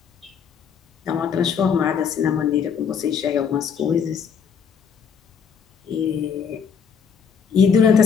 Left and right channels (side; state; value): right; quieter; 6.7 dB